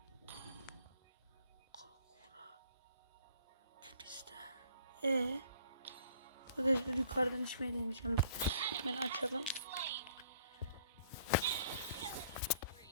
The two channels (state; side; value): inverted; both; correlation -0.59